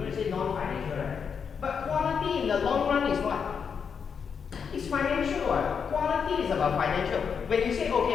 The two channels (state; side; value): quieter; right; 6.5 dB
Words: to say non-financial, right? But quality in the long run is what? It's financial. What? Quality is about financial. When you say,